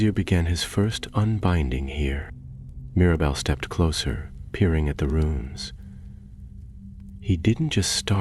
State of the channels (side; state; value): both; identical; correlation 1.00